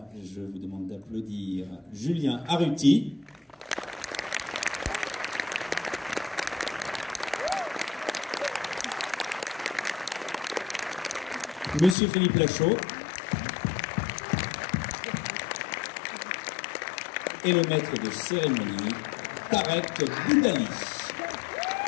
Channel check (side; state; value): right; drops out; at 12.0 s